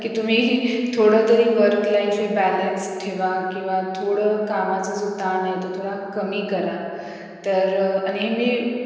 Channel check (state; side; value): identical; both; correlation 1.00